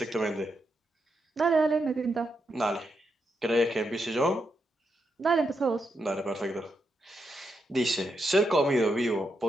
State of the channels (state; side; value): normal; both; correlation 0.83